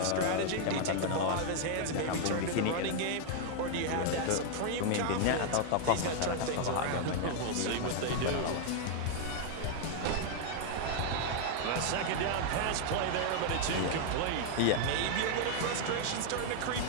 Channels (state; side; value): different; both; correlation 0.00